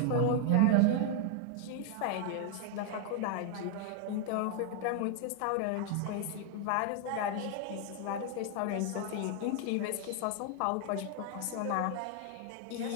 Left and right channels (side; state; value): both; different; correlation 0.00